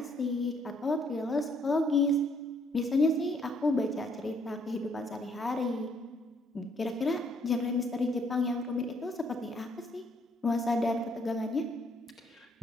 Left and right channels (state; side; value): normal; both; correlation 0.67